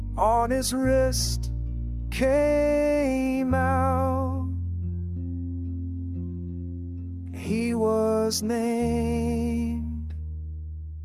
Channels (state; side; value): identical; both; correlation 1.00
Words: on his wrist, came out. He was named